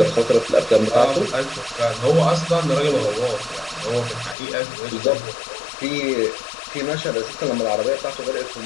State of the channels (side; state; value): right; drops out; at 4.4 s